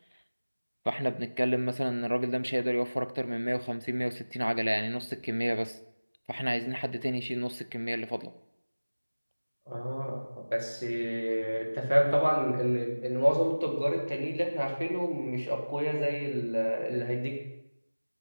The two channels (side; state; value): both; inverted; correlation -1.00